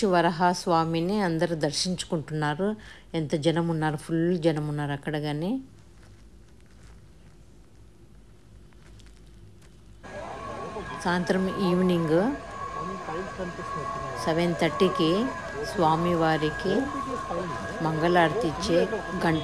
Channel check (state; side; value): identical; both; correlation 1.00